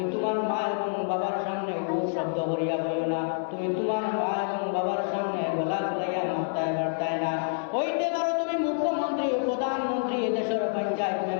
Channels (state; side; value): silent; right; 60 dB below the other